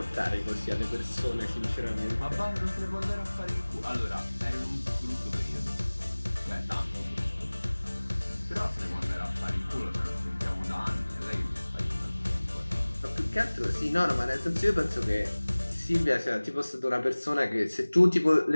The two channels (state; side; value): inverted; both; correlation -1.00